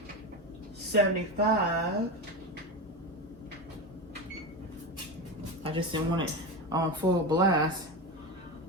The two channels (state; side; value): normal; both; correlation 0.20